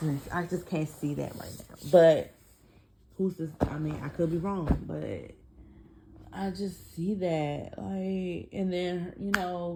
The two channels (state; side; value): identical; both; correlation 1.00